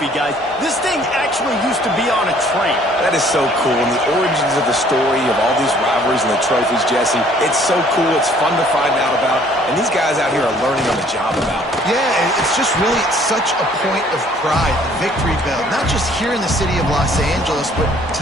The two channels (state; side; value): normal; both; correlation 0.58